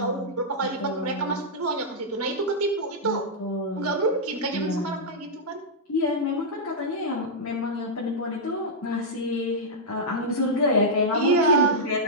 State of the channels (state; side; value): normal; both; correlation -0.08